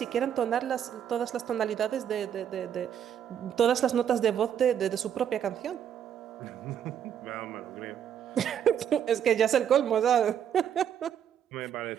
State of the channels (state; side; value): quieter; left; 9.1 dB